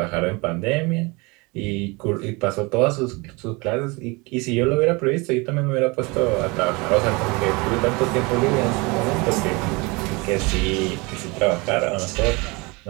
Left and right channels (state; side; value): quieter; left; 26.8 dB